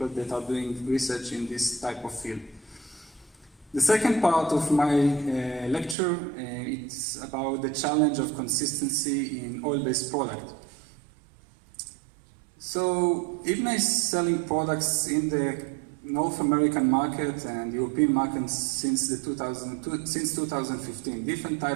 that are doing research in this type of field. The second part of my lecture, it's about the challenge of consistency in oil-based product. So Eybna is selling products in the North American market and European market since 2015. Different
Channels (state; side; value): drops out; left; at 6.0 s